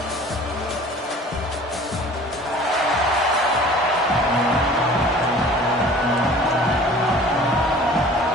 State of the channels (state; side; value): normal; both; correlation 0.47